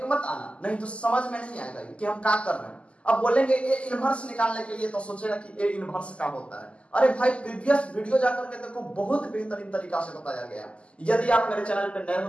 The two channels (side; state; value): right; late; 0.057 ms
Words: मत आना, नहीं तो समझ में नहीं आएगा कि हम क्या कर रहे हैं। अब बोलेंगे ए इनवर्स निकालने के लिए, तो सोचेगा कि ए इनवर्स क्या होता है। अरे भाई प्रीवियस वीडियो जाकर के देखो, बहुत बेहतरीन तरीका से बताया गया। यदि आप मेरे चैनल पर नए हो